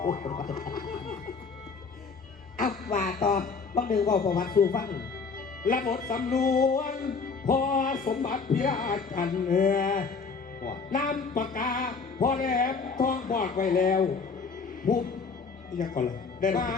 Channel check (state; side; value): quieter; right; 4.9 dB